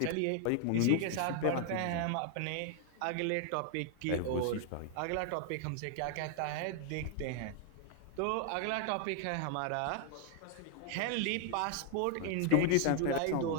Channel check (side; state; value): both; different; correlation 0.00